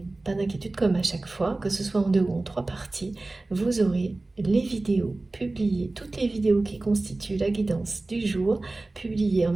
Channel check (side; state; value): left; quieter; 3.1 dB